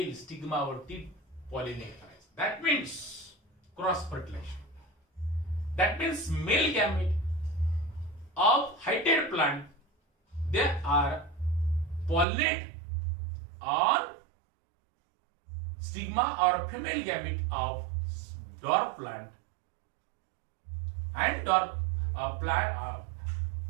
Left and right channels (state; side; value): drops out; left; at 12.2 s